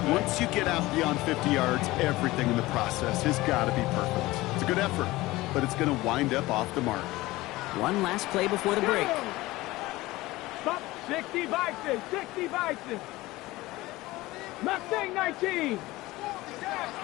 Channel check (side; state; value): right; quieter; 19.0 dB